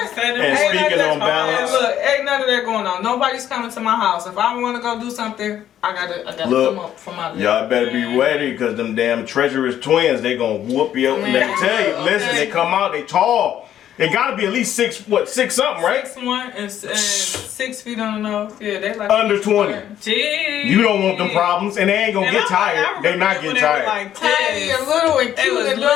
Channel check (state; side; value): quieter; right; 10.9 dB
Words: to say that. And Ain't speaking none on of that- balance- Look, ain't none of that going on. Nobody's coming to my house. If I want to go do something, I gotta Look, come up from my list. Y'all better be ready because them damn treacherous twins, they gonna whoop you up. And let me tell you, listen, Okay. they come out, they tall. They gotta be at least 6 something, right? 6'1" and 6 feet on the nose. Yeah, they like Under 20. Jeez. You don't want them problems, and they ain't gonna And get I tired. They remember not when getting they were tired. like tiny 10. and little and They cute was and